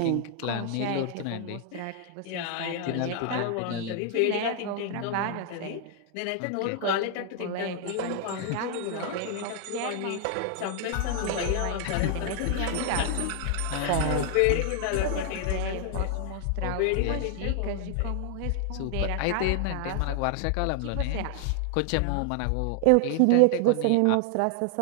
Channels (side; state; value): both; different; correlation 0.00